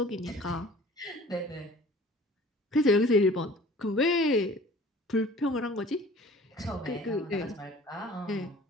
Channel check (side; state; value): both; normal; correlation 0.47